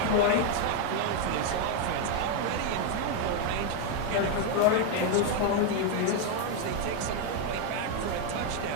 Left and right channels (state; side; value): different; both; correlation 0.01